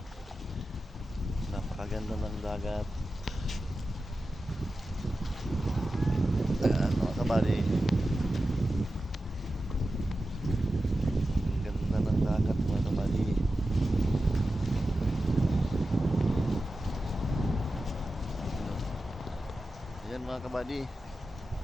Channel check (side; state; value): both; normal; correlation 0.93